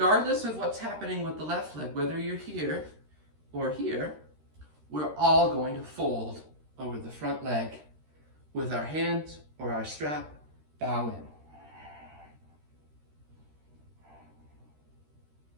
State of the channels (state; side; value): late; left; 13 ms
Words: of what's happening with the left leg, whether you're here or here, we're all going to fold over the front leg with our hands or our strap, bow in.